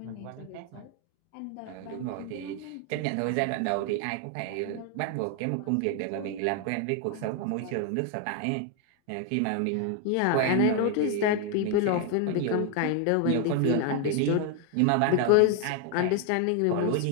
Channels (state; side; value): different; both; correlation 0.00